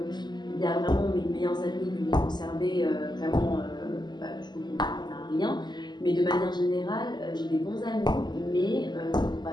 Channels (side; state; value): right; late; 0.21 ms